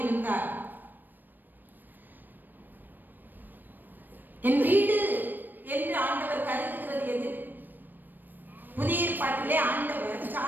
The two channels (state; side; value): late; left; 0.091 ms